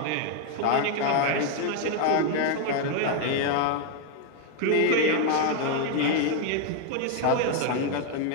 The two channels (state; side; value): different; both; correlation 0.00